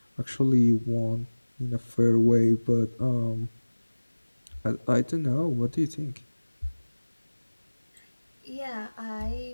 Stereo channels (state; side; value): inverted; both; correlation -1.00